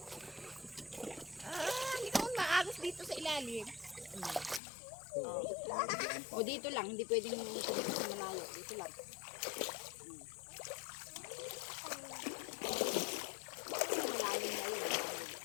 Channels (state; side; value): drops out; right; at 4.6 s